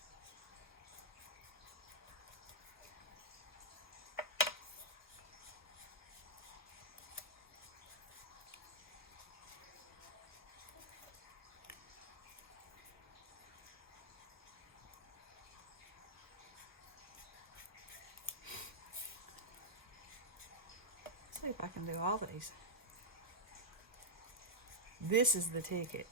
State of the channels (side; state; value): both; normal; correlation -0.11